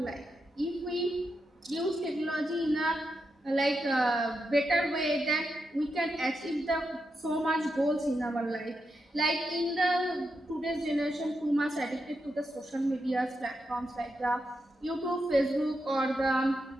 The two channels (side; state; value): both; normal; correlation 0.85